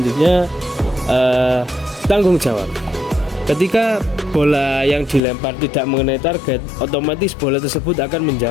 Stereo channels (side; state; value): right; drops out; at 5.2 s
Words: tanggung jawab. Ketika bola yang dilempar tidak mengenai target, otomatis bola tersebut akan